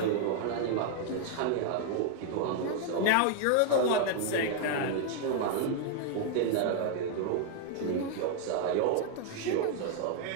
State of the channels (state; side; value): different; both; correlation 0.00